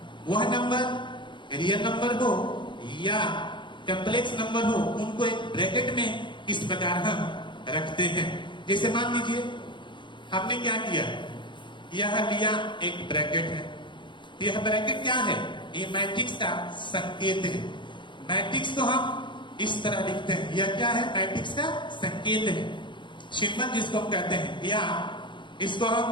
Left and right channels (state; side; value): late; right; 0.23 ms